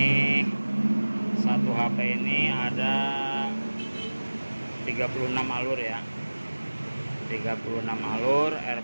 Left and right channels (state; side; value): inverted; both; correlation -1.00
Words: 1 HP ini ada 36 alur ya, 36 alur,